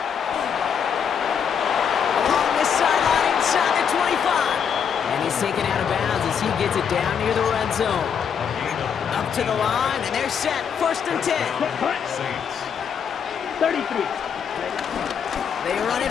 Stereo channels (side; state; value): right; quieter; 7.4 dB